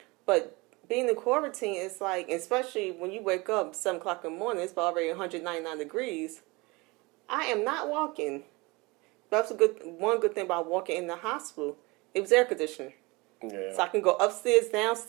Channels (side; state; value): left; quieter; 24.8 dB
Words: But being in quarantine, it's like, especially when you wake up 7 o'clock in the morning, it's already 199 degrees. I am not walking. That's one good thing about walking in the hospital. It was air conditioning. Yeah. So I can go upstairs,